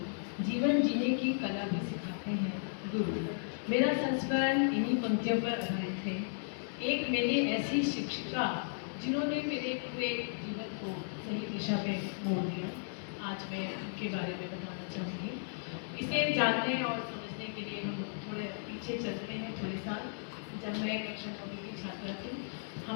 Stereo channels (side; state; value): right; silent; digital silence